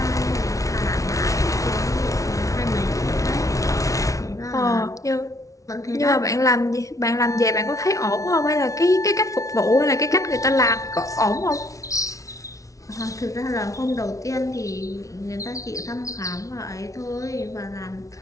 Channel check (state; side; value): late; right; 0.16 ms